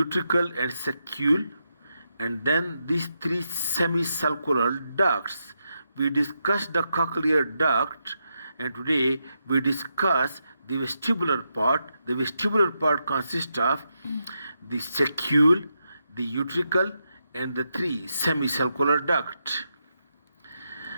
and saccule, and then these three semicircular ducts. We discussed the cochlear duct, and today we discuss the vestibular part. The vestibular part consists of the saccule, the utricle, and the three semicircular duct.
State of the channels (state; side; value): inverted; both; correlation -0.84